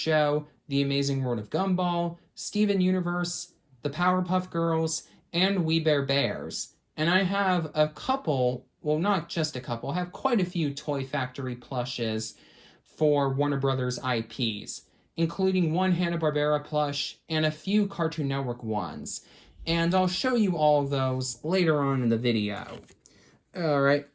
The Amazing World of Gumball, Steven Universe, the Powerpuff Girls, and We Bare Bears. And I have a couple, well, not just a couple, I have quite a few Toy Factory plushes for Warner Brothers IPs, including one Hanna-Barbera plush and a few Cartoon Network ones. And I'll show you all of those later on in the video. Alright,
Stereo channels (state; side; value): identical; both; correlation 1.00